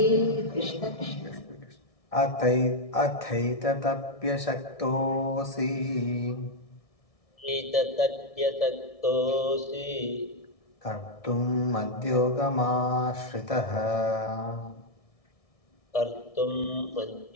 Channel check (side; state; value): right; late; 1.6 ms